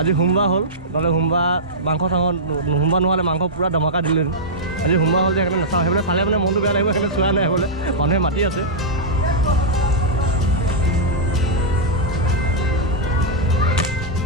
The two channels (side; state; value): both; normal; correlation -0.10